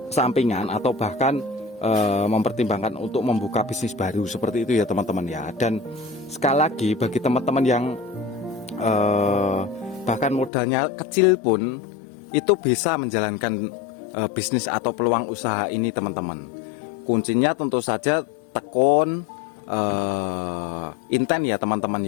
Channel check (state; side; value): drops out; right; at 10.5 s